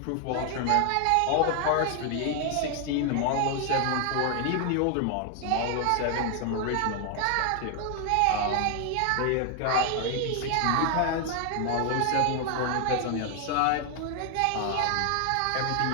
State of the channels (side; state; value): both; different; correlation 0.00